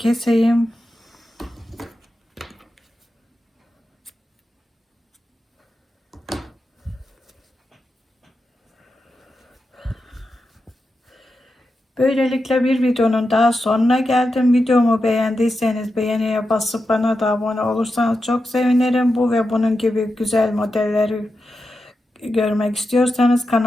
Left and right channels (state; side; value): normal; both; correlation 0.89